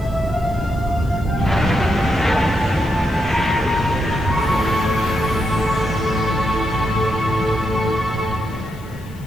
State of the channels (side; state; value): left; noise; hiss, 25 dB below the sound